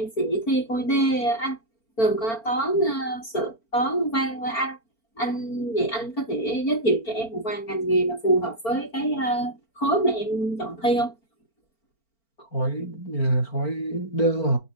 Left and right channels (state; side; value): late; right; 4.4 ms